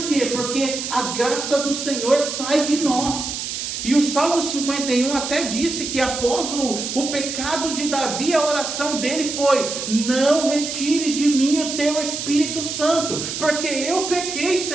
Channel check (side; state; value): right; noise; hiss, 5 dB below the sound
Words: quê? Porque a graça do Senhor sai de nós. E o Salmo 51 até disse que após o pecado de Davi, a oração dele foi: não retires de mim o teu Espírito Santo, porque eu pequei,